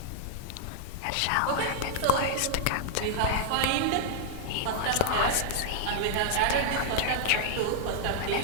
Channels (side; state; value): both; different; correlation -0.01